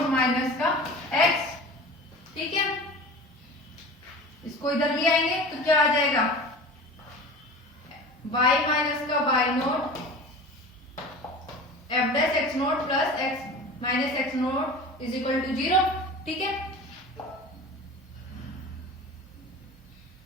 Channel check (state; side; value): normal; both; correlation 0.36